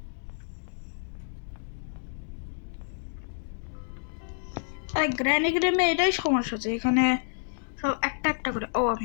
আরে গ্র্যানি গেমে এটাই সমস্যা আছে, এখানে সব একটা একটা করে। ও আমি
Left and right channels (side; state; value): right; silent; digital silence